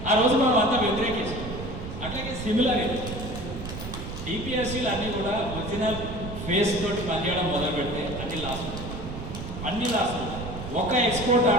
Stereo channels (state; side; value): noise; right; rumble, 8 dB below the sound